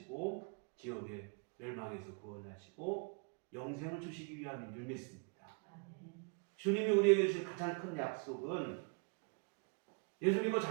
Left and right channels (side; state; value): left; quieter; 36.0 dB